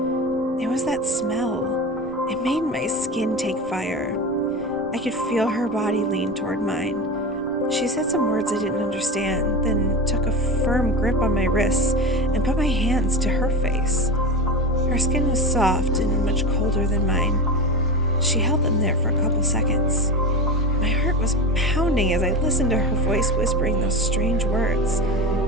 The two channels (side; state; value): right; noise; rumble, 22 dB below the sound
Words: It was that smell. It made my skin take fire. I could feel her body lean toward mine. She said some words I didn't understand, then took a firm grip on my wrists and put my hands to her face. Her skin was soft and much colder than mine. She held them there for a couple seconds. My heart was pounding as I listened to her voice whispering those strange words.